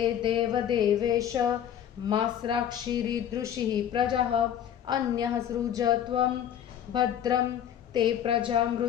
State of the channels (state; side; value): quieter; right; 9.8 dB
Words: देवदेवेश मास्राक्षिरीदृशिः प्रजः अन्यः सृज त्वं भद्रं ते प्रजा